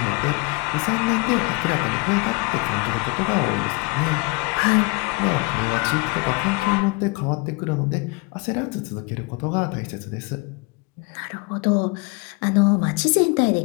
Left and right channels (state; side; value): quieter; right; 26.9 dB